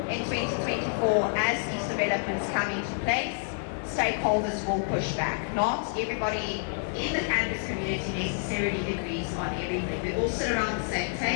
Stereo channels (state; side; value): silent; right; digital silence